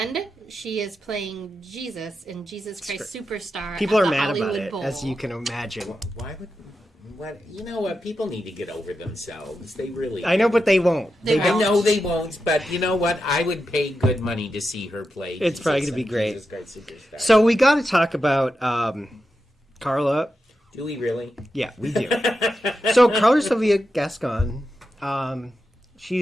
she is playing Jesus in Jesus Christ Superstar. People at are the mad Hollywood about it, Bowl. as you can imagine. Why would... What, you know what? People need to get over themselves. They really... I know, but they won't. I know they won't, but you know what? I would pay good money to see her play. It's probably going to be great. Jesus Christ Superstar. So we got to talk about Carla. Do we really? Yeah, we do. So Carla Sylvia Gascon,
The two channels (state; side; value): normal; both; correlation 0.88